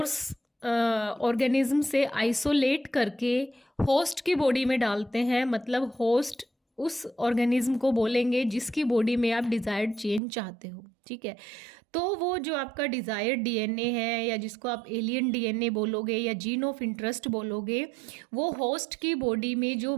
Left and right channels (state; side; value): drops out; left; at 10.2 s